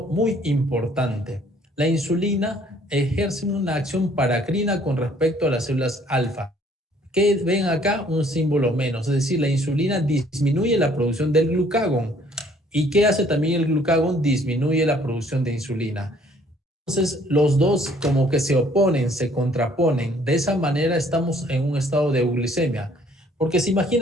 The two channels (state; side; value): normal; both; correlation 0.60